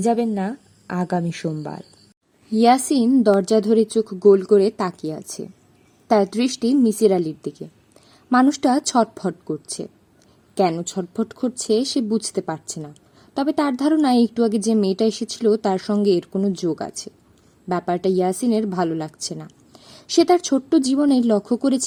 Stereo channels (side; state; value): both; identical; correlation 1.00